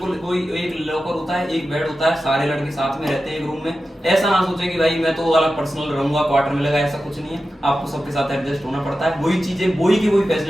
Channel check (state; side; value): normal; both; correlation 0.92